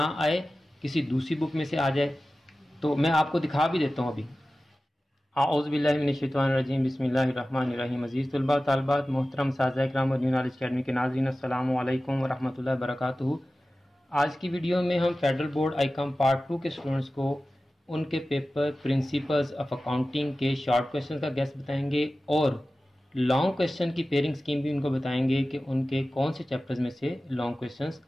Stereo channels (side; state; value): both; normal; correlation 0.95